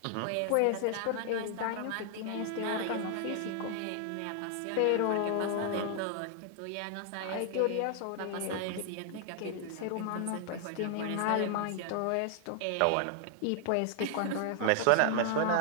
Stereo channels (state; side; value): different; both; correlation 0.00